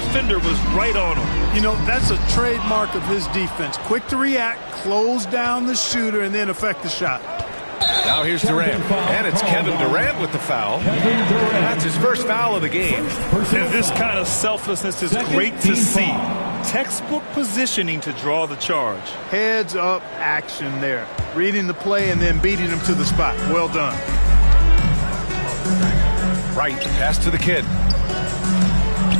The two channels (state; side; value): inverted; both; correlation -1.00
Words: was right on him. That's a trademark of his defense. Quick to react, close down the shooter, and then affect the shot. Now here's Durant. And it's Kevin Durant with the foul. That's his first foul of the game. And this kind of selflessness is great to see. Textbook positioning to draw the charge. Heads up action there. Reading the play and then beating him to the spot. Well done. Right, pass to the Kid.